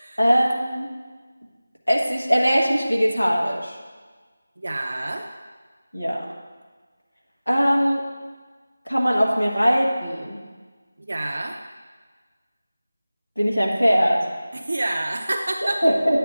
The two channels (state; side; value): inverted; both; correlation -0.98